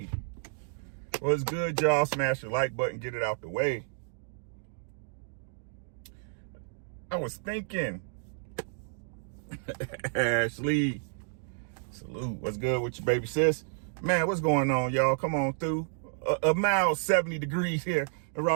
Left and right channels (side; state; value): left; silent; digital silence